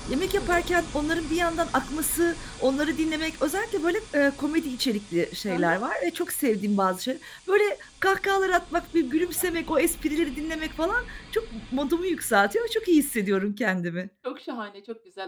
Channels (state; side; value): identical; both; correlation 1.00